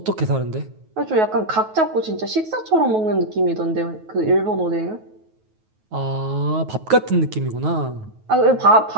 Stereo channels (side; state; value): left; late; 9.3 ms